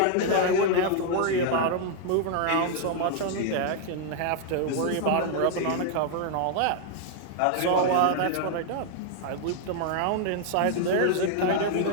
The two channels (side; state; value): both; different; correlation 0.00